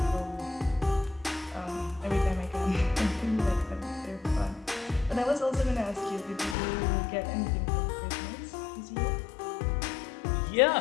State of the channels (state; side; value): drops out; right; at 6.6 s